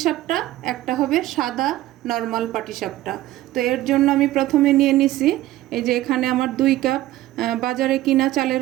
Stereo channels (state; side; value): quieter; left; 15.5 dB